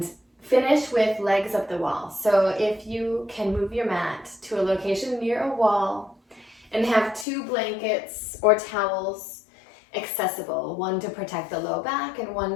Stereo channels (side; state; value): right; drops out; at 7.2 s